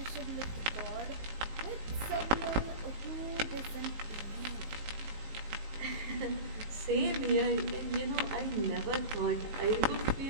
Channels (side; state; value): left; late; 18 ms